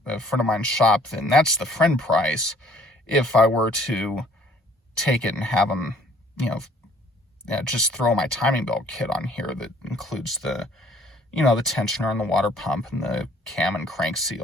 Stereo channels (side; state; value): both; normal; correlation 0.57